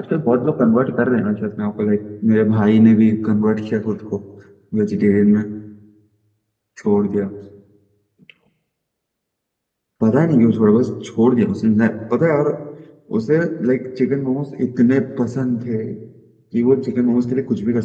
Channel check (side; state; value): both; identical; correlation 1.00